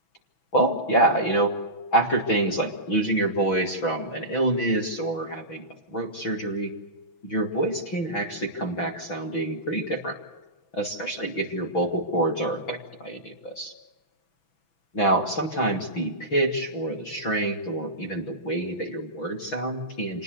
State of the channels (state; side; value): late; right; 6.1 ms